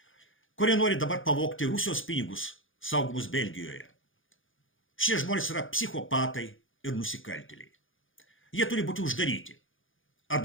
kurie nori dabar pavogti Rusijos pinigus saugomus Belgijoje. Šie žmonės yra psichopatai ir nusikaltėliai. Jie turi būti uždaryti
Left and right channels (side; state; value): right; late; 0.58 ms